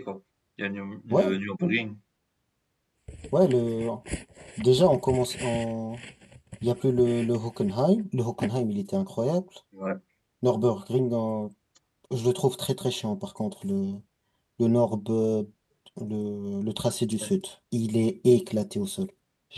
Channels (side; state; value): both; identical; correlation 1.00